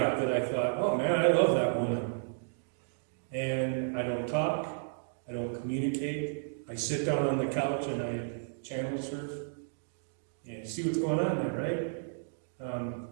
that I thought, oh man, I love that woman. And I don't talk, I don't communicate, I sit down on the couch and I channel surf. And you see what's going on there,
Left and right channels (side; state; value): left; silent; digital silence